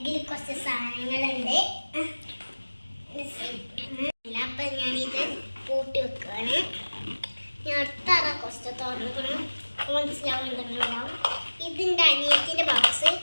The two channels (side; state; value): both; inverted; correlation -1.00